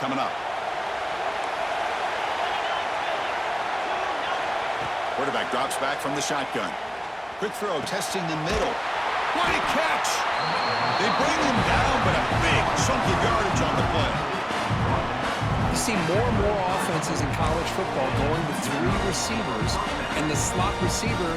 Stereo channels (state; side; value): identical; both; correlation 1.00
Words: up. Quarterback drops back from the shotgun. Quick throw, testing the middle. What a catch! They bring him down, but a big chunk of yardage on the play. You see more and more offenses in college football going to three receivers, and the slot